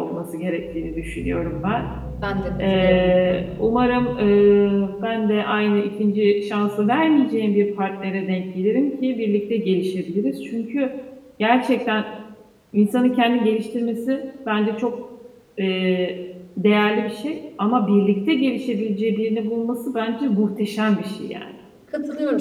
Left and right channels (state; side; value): identical; both; correlation 1.00